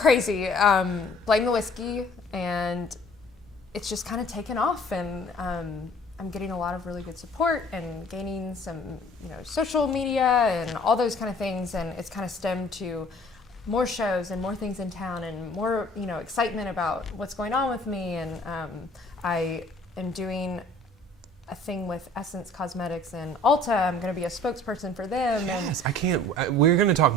Blame the Whiskey, and it's just kind of taken off, and I'm getting a lot of really good support and gaining some, social media and all those kind of things, and it's kind of stemmed to more shows and more things in town and more, excitement about what's going on with me. And I am doing a thing with Essence Cosmetics and Ulta. I'm going to be a spokesperson for them. Yes, we're going to talk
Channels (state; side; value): normal; both; correlation 0.53